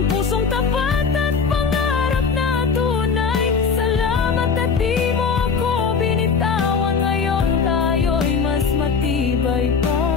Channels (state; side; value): quieter; right; 5.5 dB